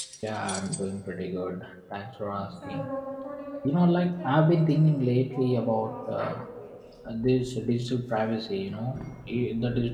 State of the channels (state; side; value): identical; both; correlation 1.00